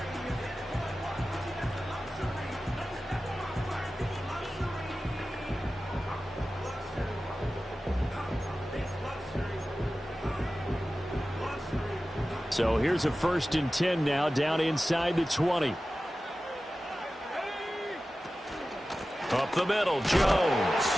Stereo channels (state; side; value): normal; both; correlation 0.95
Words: So here's a 1st and 10 now, down inside the 20. Up the middle, Jones.